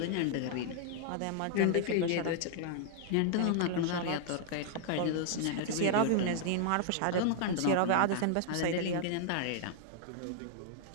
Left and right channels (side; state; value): both; different; correlation -0.01